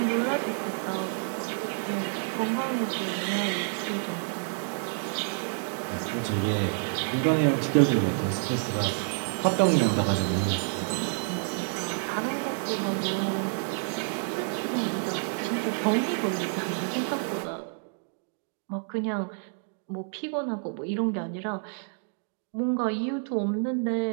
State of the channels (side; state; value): left; silent; 59 dB below the other